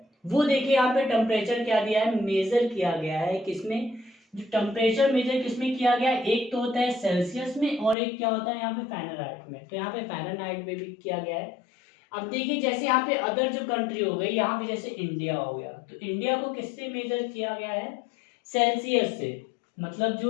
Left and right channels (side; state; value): right; drops out; at 8.0 s